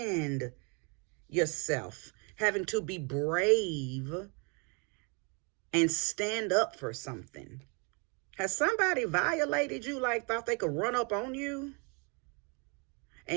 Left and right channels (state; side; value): quieter; left; 33.8 dB